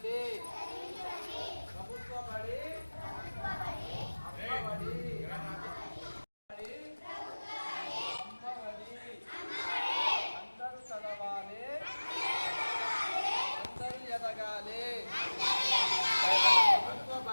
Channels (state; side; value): inverted; both; correlation -1.00